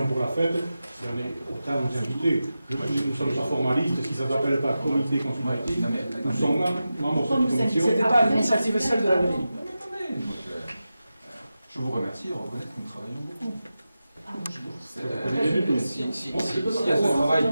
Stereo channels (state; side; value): inverted; both; correlation -0.93